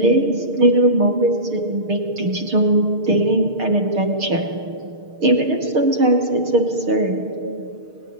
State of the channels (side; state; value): left; late; 6.6 ms